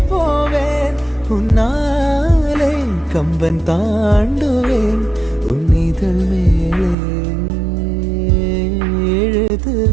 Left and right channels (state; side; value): drops out; left; at 7.0 s